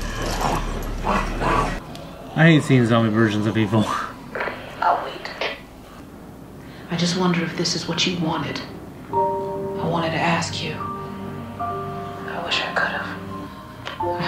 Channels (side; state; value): both; identical; correlation 1.00